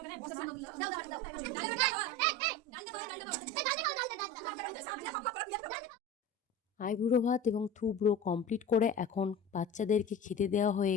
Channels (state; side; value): normal; both; correlation 0.33